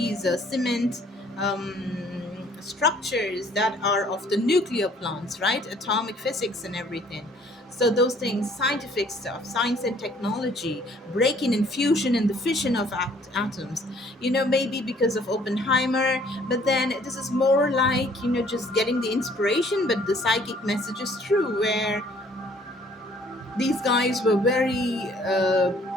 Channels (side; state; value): both; normal; correlation 0.59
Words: cement structures that are of the nuclear plants, right? Atomic physics and everything. So those things, scientific stuff, science and technology, breaking and fusion and the fission of atoms. Maybe because of Oppenheimer, but then this is more like, just getting the inspiration, but the psychic message is true, where these guys were very,